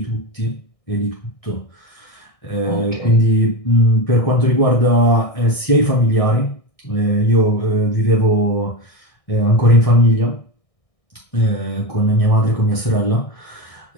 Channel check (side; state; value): right; late; 1.6 ms